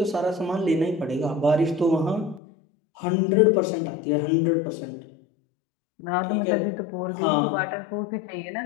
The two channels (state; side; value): drops out; right; at 2.4 s